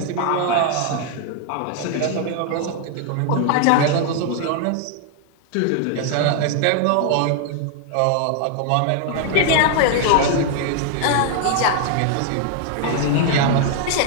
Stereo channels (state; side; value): different; both; correlation 0.00